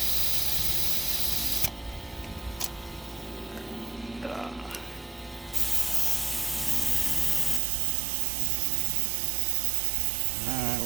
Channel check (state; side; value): drops out; left; at 7.6 s